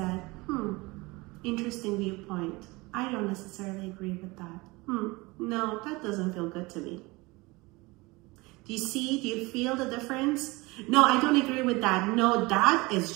interesting viewpoint. I don't necessarily agree with that. No, that doesn't feel good to me. Do you see? Do you feel the difference? No, I don't agree with that. No, that is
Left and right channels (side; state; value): left; quieter; 23.5 dB